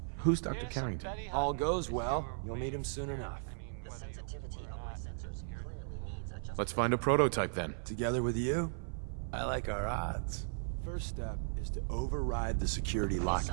Who's Dr. Carrington? All goes well, you'll meet him soon enough. The sensitivity of my sensors clearly needs adjustment. Let's find a prototype then. Together with you, I like our odds. First step is to override the security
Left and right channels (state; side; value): silent; left; 54 dB below the other